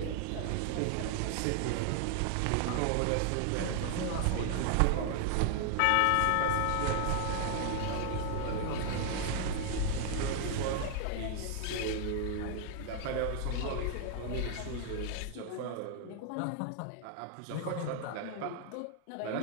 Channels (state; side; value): different; both; correlation 0.00